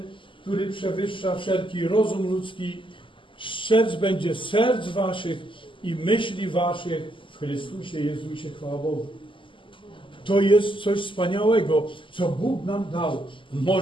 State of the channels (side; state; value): right; late; 0.25 ms